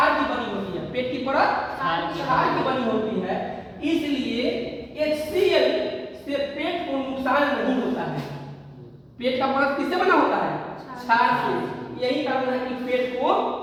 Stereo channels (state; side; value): identical; both; correlation 1.00